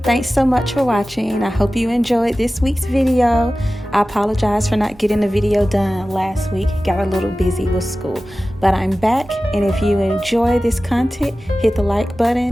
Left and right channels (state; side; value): normal; both; correlation 0.96